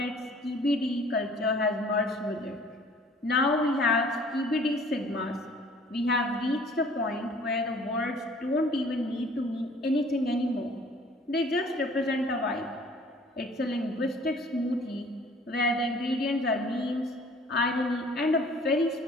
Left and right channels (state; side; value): normal; both; correlation 0.53